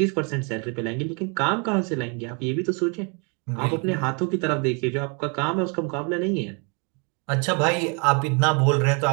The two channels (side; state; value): left; quieter; 34.5 dB